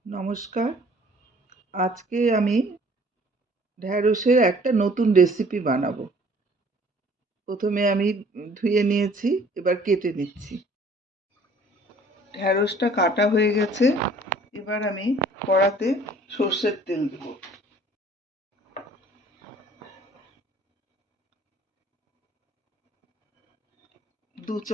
নমস্কার। আজকে আমি ঢ্যাঁড়সের একটা নতুন রেসিপি বানাবো। প্রথমে আমি ধুয়ে নিয়েছি, এবার কেটে নিচ্ছি। ঢ্যাঁড়সটা কাটা হয়ে গেছে। এবার আমি কড়াতে সর্ষের তেল দেব। 2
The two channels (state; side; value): normal; both; correlation 0.54